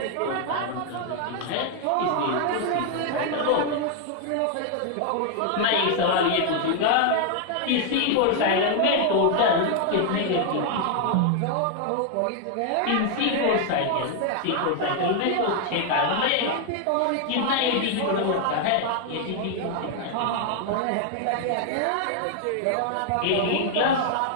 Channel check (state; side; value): different; both; correlation 0.00